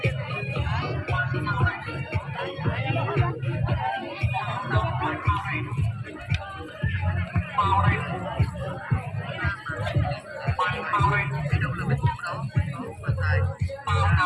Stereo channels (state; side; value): identical; both; correlation 1.00